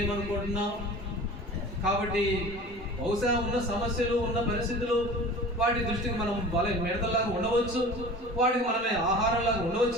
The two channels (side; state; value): both; normal; correlation 0.39